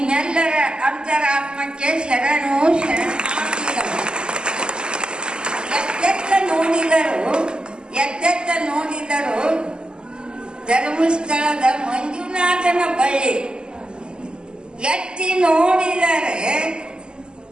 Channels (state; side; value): late; left; 0.048 ms